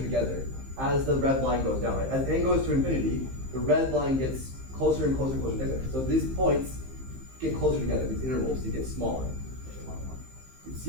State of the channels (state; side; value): late; left; 15 ms